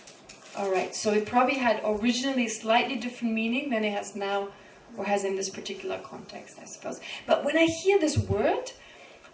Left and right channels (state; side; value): identical; both; correlation 1.00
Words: All right. So it probably had originally slightly different meaning than it has now, or has in this particular context, I suppose. But when I hear this word,